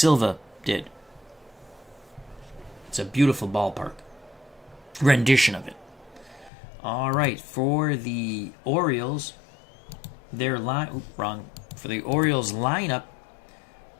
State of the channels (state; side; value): drops out; right; at 6.5 s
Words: did. It's a beautiful ballpark. Rendition of it. All right, for the Orioles, For the Orioles lineup,